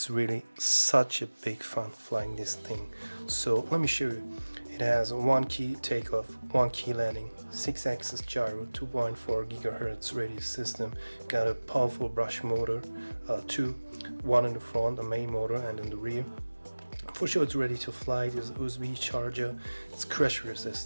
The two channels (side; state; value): both; inverted; correlation -1.00